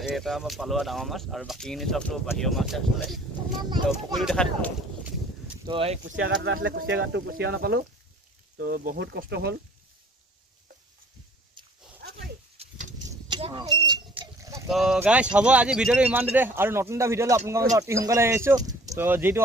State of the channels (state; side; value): normal; both; correlation 0.54